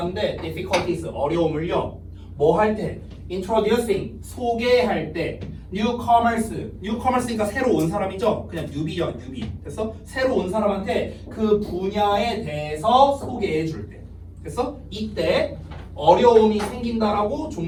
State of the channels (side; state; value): both; identical; correlation 1.00